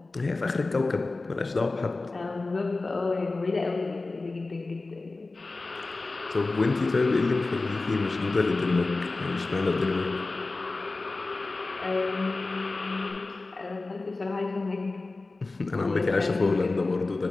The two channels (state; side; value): quieter; right; 3.4 dB